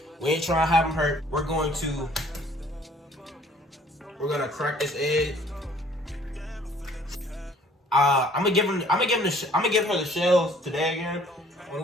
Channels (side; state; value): both; normal; correlation 0.57